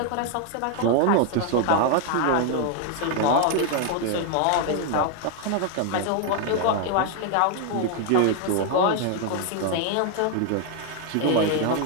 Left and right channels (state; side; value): different; both; correlation 0.00